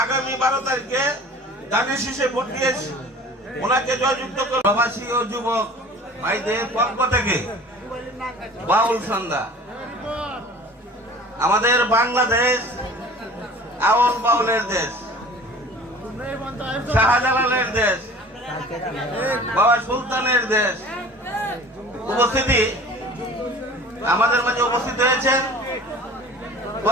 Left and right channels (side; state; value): both; normal; correlation 0.44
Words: আগামী 12 তারিখে ধানের শীষে ভোট দিয়ে ওনাকে জয়যুক্ত করে প্রবাসী ও যুবক ভাইদের পক্ষ থেকে বাউল সন্ধ্যা। আমাদের বাংলাদেশ আউল বাউলের দেশ, শাহজালালের দেশ, বাবা সুলতানের দেশ। উপস্থিতি আমাদের মাঝে উপস্থিত হয়েছেন